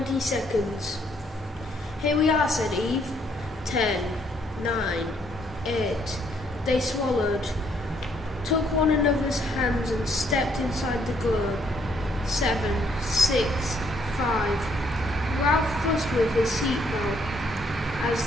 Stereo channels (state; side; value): normal; both; correlation 0.68